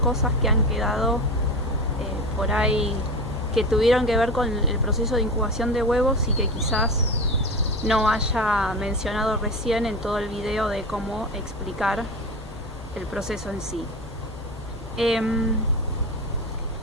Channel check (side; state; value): both; normal; correlation 0.26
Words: que han quedado por ahí, que tuvieron que ver con el proceso de incubación de huevos y que quizás no haya mencionado recién en todo el video de cómo explicar el proceso en sí.